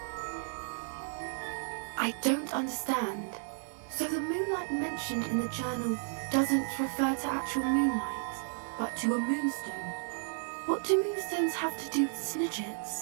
I don't understand. So the moonlight mentioned in the journal doesn't refer to actual moonlight, but to a moonstone. What do moonstones have to do with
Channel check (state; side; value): silent; left; digital silence